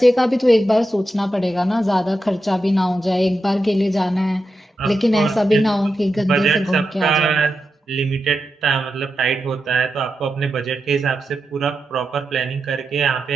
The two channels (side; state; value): both; normal; correlation 0.88